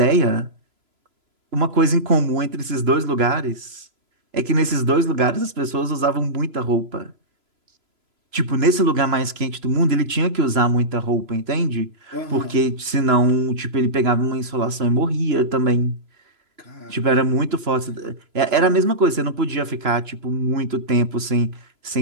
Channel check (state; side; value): late; left; 3.0 ms